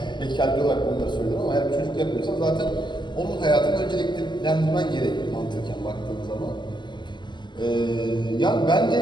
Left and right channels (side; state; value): right; late; 0.22 ms